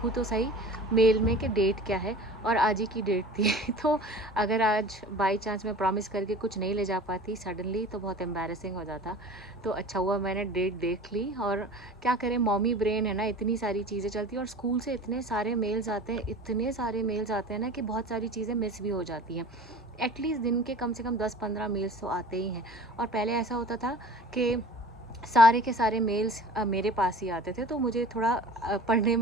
तो सही मेल में कि डेट क्या है, और आज ही की डेट थी। तो अगर आज बाई चांस मैं प्रॉमिस करके कुछ नहीं ले जा पाती सडनली तो बहुत एम्बैरेसिंग हो जाता। तो अच्छा हुआ मैंने डेट देख ली। और क्या करें, मॉमी ब्रेन है ना, इतनी सारी चीज़ें चलती हैं और स्कूल से इतने सारे मेल्स आते हैं, इतने सारे मेल्स आते हैं ना कि बहुत सारी चीज़ें मिस भी हो जाती हैं। एटलीस्ट दिन के कम से कम 10-15 मेल्स तो आते ही हैं। और पहले ऐसा होता था कि सारे के सारे मेल्स मेरे पास ही आते थे, तो मुझे थोड़ा पढ़ने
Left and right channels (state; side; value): normal; both; correlation 0.40